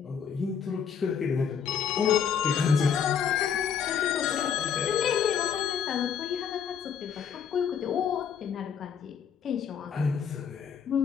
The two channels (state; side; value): quieter; right; 7.5 dB